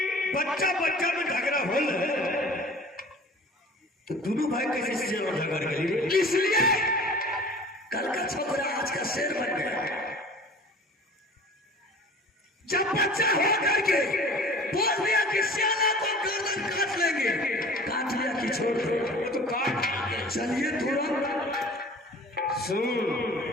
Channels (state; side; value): normal; both; correlation 0.44